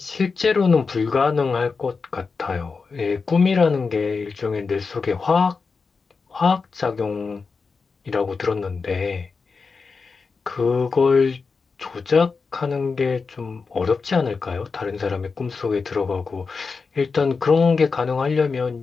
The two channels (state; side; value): quieter; right; 4.8 dB